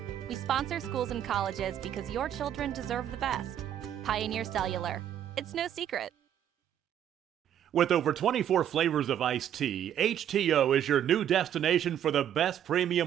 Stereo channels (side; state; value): left; quieter; 10.2 dB